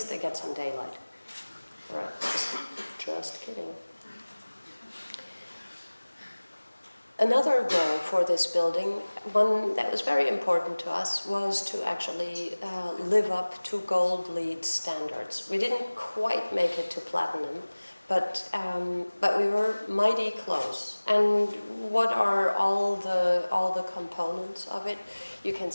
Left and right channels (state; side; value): inverted; both; correlation -1.00